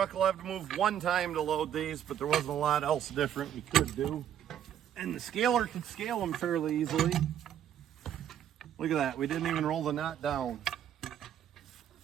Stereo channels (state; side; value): quieter; left; 10.1 dB